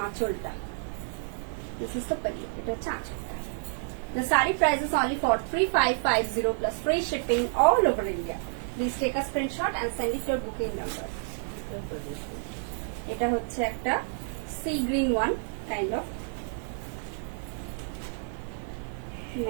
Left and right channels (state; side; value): silent; left; 58 dB below the other